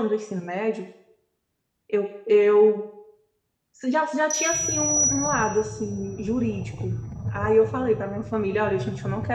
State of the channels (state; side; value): identical; both; correlation 1.00